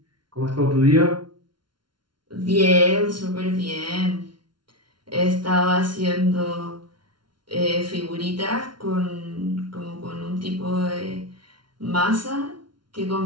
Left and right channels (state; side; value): late; left; 0.72 ms